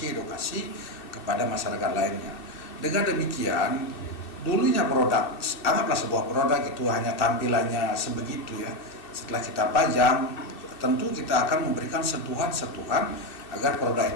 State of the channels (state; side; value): late; right; 2.6 ms